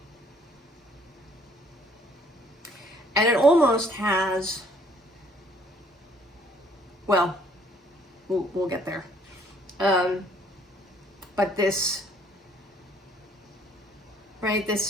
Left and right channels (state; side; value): normal; both; correlation 0.62